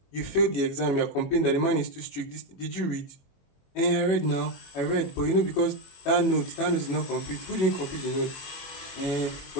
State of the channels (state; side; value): late; right; 21 ms